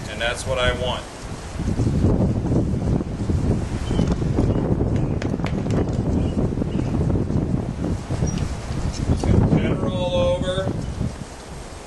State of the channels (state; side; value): identical; both; correlation 1.00